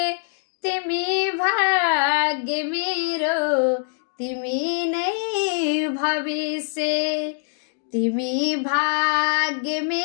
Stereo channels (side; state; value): right; silent; digital silence